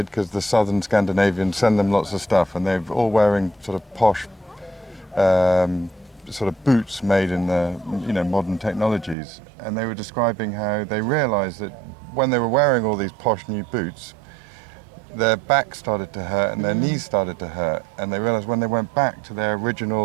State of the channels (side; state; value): left; drops out; at 9.2 s